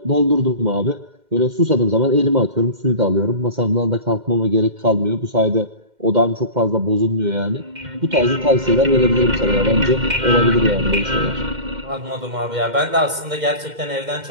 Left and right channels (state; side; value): late; left; 2.1 ms